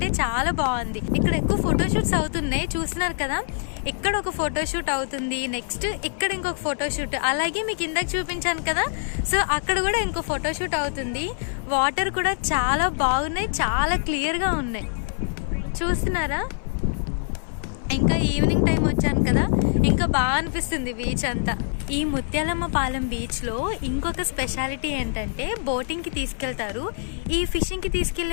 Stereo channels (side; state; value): right; silent; 56 dB below the other